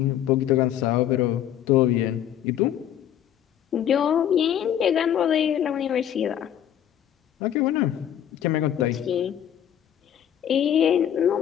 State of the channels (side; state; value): right; quieter; 10.3 dB